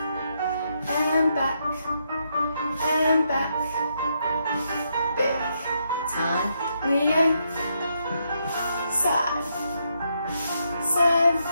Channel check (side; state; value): both; inverted; correlation -0.79